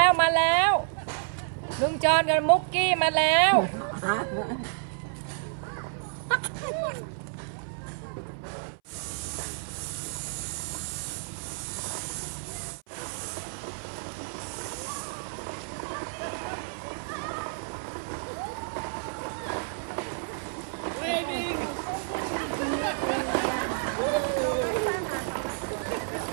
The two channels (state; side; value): silent; left; 58 dB below the other